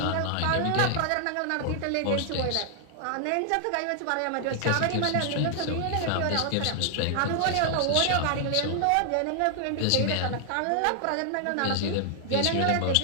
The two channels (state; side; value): different; both; correlation 0.00